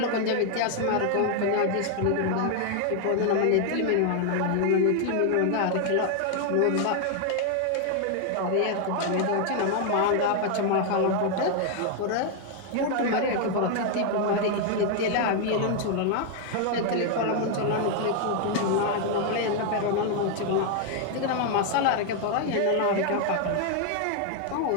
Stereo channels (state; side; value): different; both; correlation 0.00